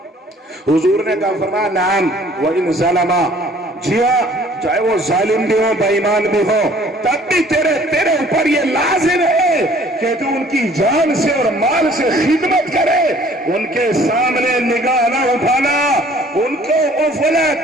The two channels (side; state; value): both; normal; correlation 0.55